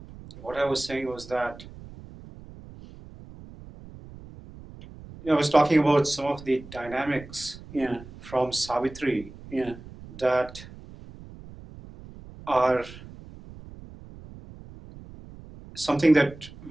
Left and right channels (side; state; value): right; noise; rumble, 17 dB below the sound